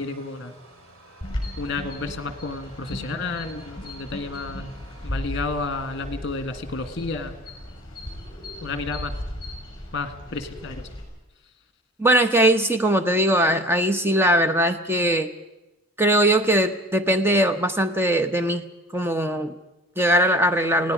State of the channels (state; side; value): normal; both; correlation 0.42